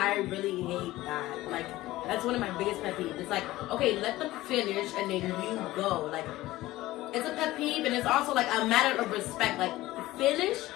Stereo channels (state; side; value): quieter; right; 17.2 dB